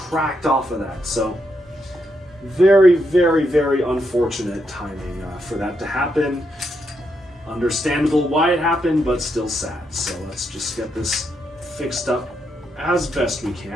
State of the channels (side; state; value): both; normal; correlation 0.80